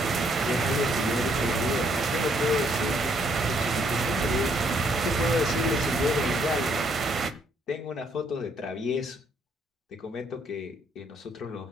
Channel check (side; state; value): both; normal; correlation 0.69